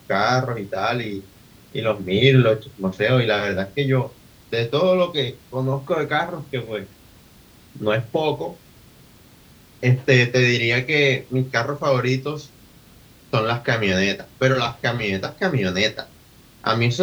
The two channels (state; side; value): identical; both; correlation 1.00